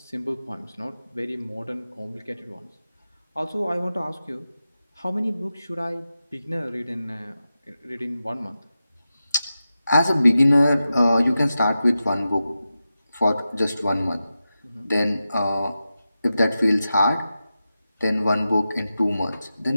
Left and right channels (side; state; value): both; inverted; correlation -0.92